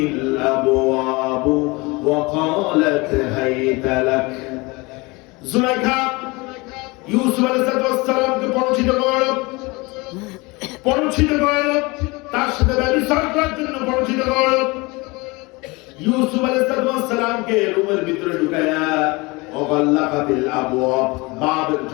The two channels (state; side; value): quieter; right; 25.0 dB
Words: الأبواب وقالت هيت لك। জুলাইখা ইউসুফ আলাইহিস সালামকে পরিচিত করল, তার সাথে ব্যভিচার করার জন্য পরিচিত করল। ইউসুফ আলাইহিস সালামকে রুমের ভিতরে ঢুকায়া ওয়াল্লাকাতিল আবওয়াব, বাবের